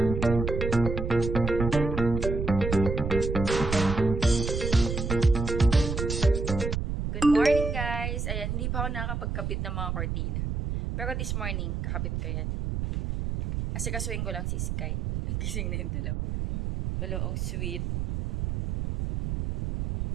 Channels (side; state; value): right; noise; rumble, 2 dB below the sound